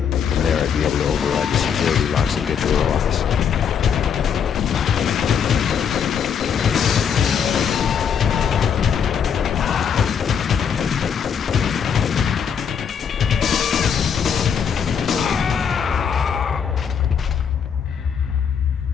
From there, I'd be able to override the security locks and get to her office.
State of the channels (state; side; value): quieter; right; 7.4 dB